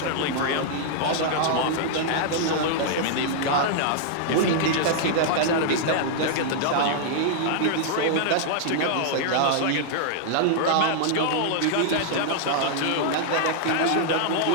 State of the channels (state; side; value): different; both; correlation -0.01